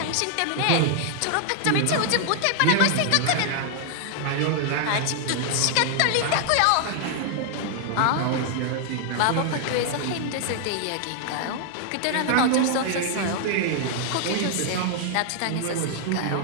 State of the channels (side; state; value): both; different; correlation 0.00